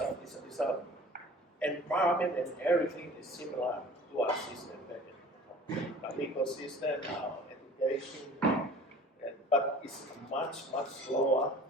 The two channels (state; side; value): normal; both; correlation 0.45